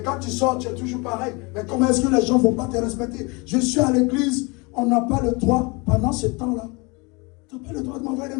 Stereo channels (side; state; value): right; quieter; 28.1 dB